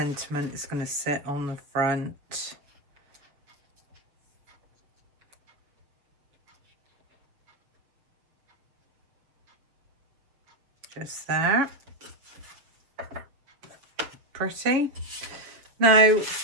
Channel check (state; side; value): late; left; 7.3 ms